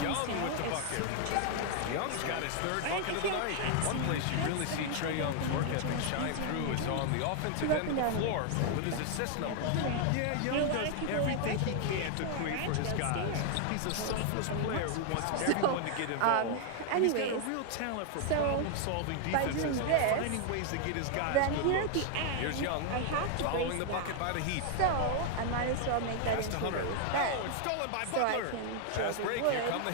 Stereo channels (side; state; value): both; different; correlation 0.00